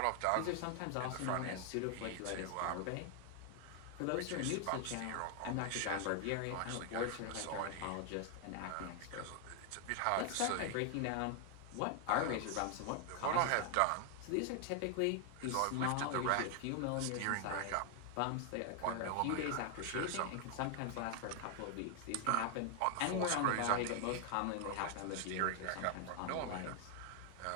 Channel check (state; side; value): different; both; correlation 0.00